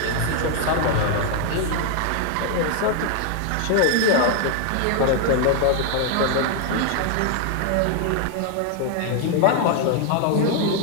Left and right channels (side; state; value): both; different; correlation 0.00